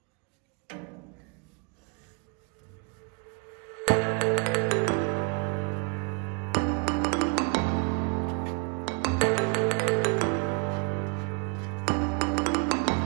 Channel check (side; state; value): left; quieter; 33.4 dB